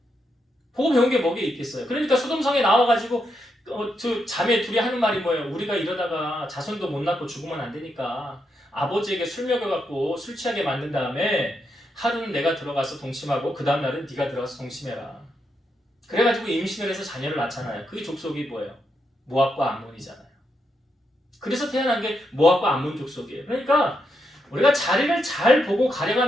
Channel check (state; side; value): normal; both; correlation 0.82